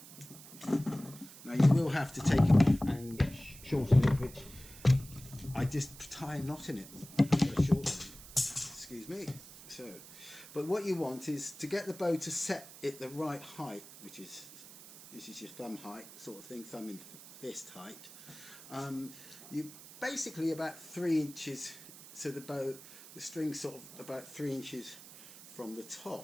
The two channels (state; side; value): noise; right; hiss, 17 dB below the sound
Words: Now you will have to take it off and shorten it, which I just tie a knot in it. Excuse me. So, but what you want is to get the bow to set it the right height, which is this is your thumb height sort of thing, thumb and fist height. You basically about 3 inches, so the string's sort of about 3 inches from the